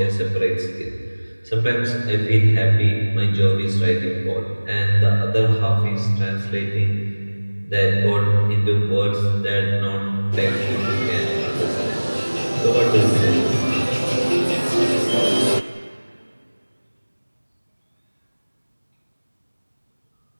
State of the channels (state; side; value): inverted; both; correlation -1.00